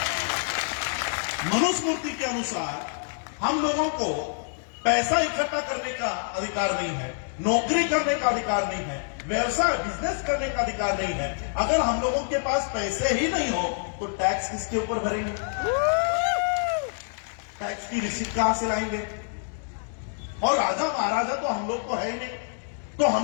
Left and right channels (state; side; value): silent; right; digital silence